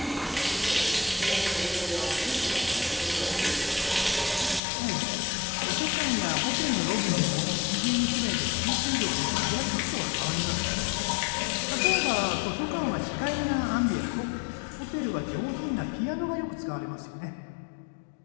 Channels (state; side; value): drops out; right; at 4.6 s